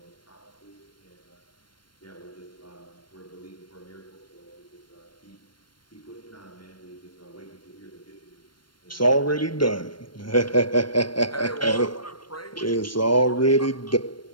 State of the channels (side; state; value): right; late; 0.72 ms